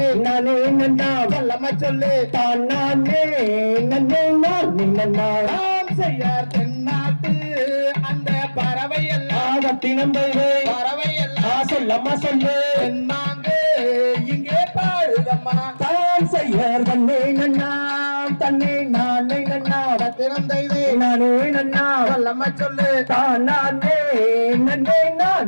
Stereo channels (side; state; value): both; inverted; correlation -1.00